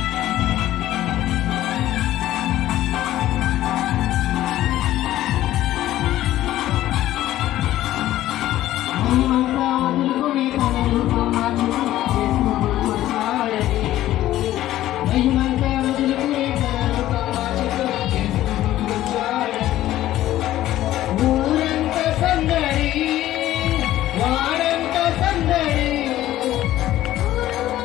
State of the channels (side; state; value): right; quieter; 14.1 dB